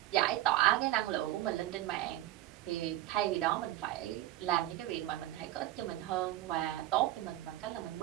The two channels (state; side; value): quieter; left; 15.0 dB